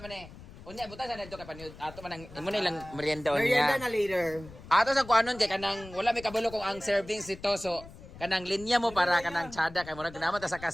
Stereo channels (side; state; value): left; noise; rumble, 17 dB below the sound